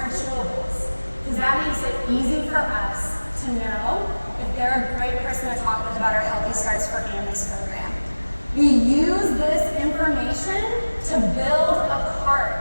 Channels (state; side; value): inverted; both; correlation -1.00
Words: chewables, because that makes it easy for us to know if they're a great person to talk with about our Healthy Starts for Families program. We use this information to build a